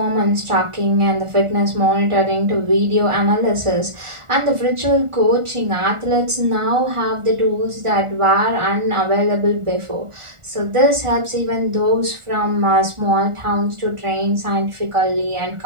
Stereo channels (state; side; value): late; left; 1.4 ms